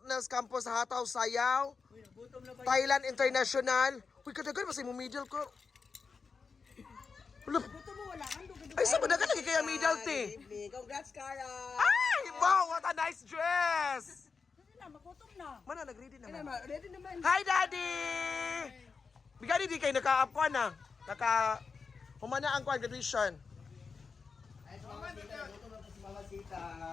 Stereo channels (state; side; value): quieter; right; 5.0 dB